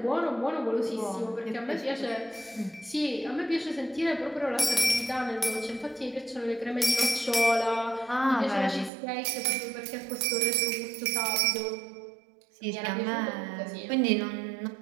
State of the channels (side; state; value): left; drops out; at 8.9 s